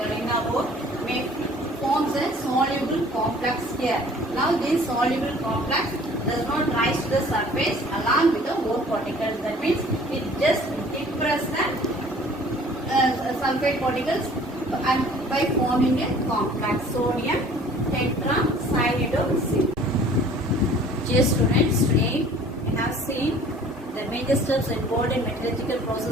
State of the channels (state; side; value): normal; both; correlation 0.51